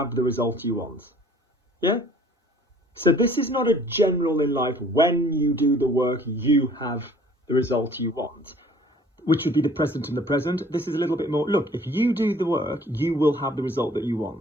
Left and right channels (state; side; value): normal; both; correlation 0.54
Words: the result you want. Yeah? So this is not a general in life, when you do the work, you have the result you want, which would be the present and the present. This is a little bit more, look, if you do the work, you will have the result that you